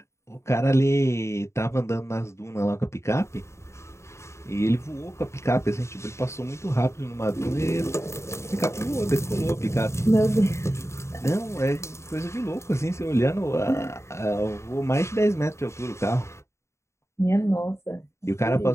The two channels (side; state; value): right; late; 0.13 ms